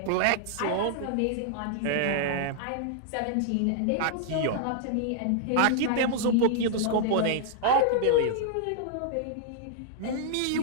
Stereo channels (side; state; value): both; different; correlation -0.01